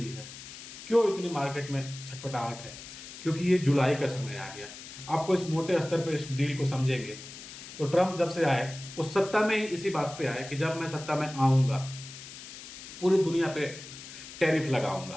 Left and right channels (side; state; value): left; noise; hiss, 14 dB below the sound